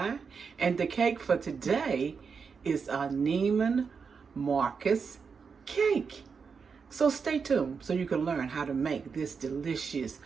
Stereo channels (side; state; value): left; quieter; 5.7 dB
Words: And the cake for today is a Neiman Marcus Cake. So stay tuned so you can learn how to make this delicious